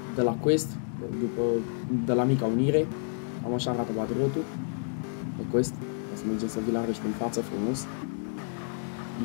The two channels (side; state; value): right; silent; 58 dB below the other